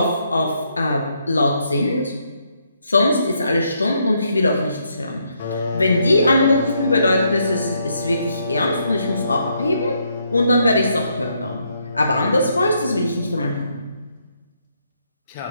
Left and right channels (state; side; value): inverted; both; correlation -0.75